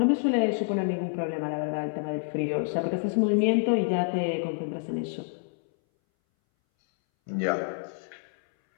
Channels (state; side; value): silent; right; 59 dB below the other